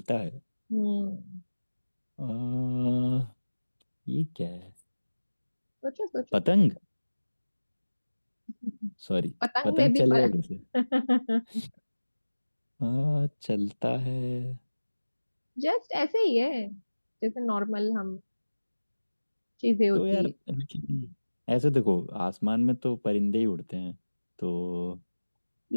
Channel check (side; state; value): both; inverted; correlation -1.00